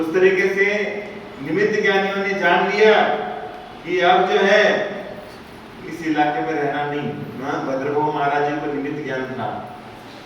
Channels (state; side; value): identical; both; correlation 1.00